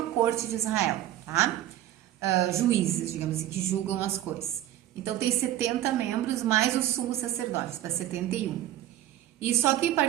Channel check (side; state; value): left; quieter; 13.1 dB